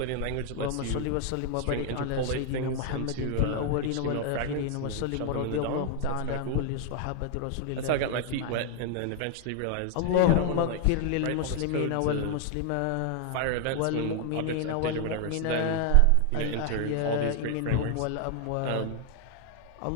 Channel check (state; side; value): different; both; correlation 0.00